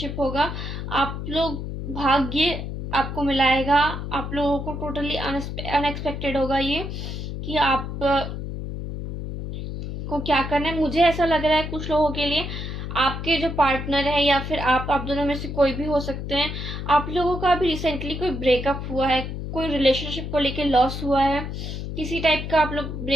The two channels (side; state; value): left; noise; hum, 6 dB below the sound